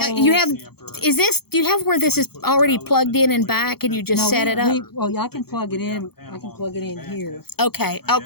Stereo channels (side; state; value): right; late; 0.96 ms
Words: Is this? Do you have where this is already plugged in and back, and you just set it up? Well, yeah, I can plug it in. I can plug it in here. Okay.